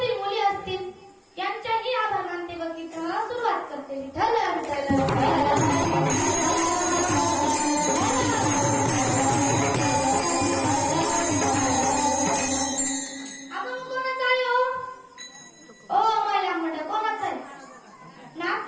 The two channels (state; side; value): identical; both; correlation 1.00